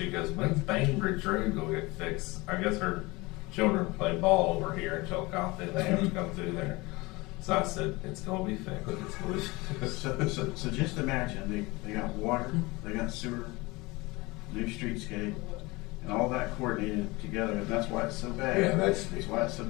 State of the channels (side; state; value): right; quieter; 23.1 dB